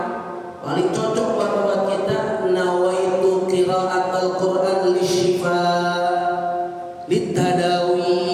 paling cocok banget buat kita. Nawaitu qiraatul Quran lisyifa litadawi.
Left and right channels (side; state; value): both; identical; correlation 1.00